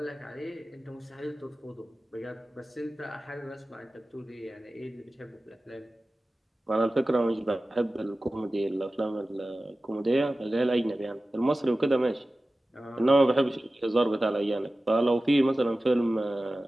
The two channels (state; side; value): normal; both; correlation 0.96